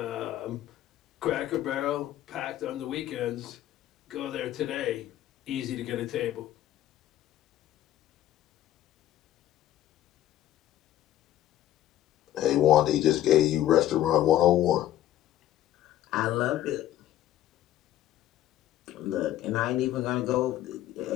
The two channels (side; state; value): right; quieter; 13.0 dB